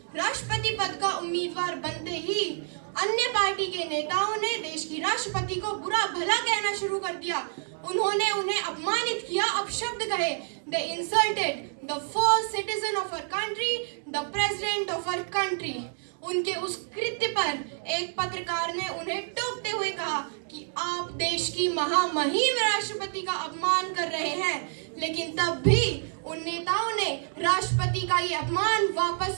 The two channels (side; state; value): left; silent; digital silence